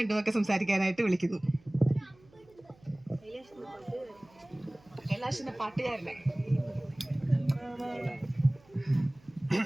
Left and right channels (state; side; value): noise; right; hum, 29 dB below the sound